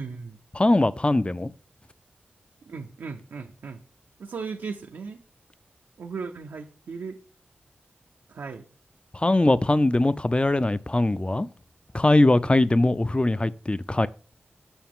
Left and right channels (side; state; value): both; normal; correlation 0.97